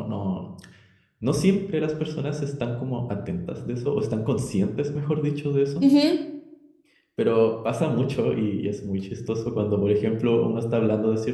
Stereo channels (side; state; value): both; identical; correlation 1.00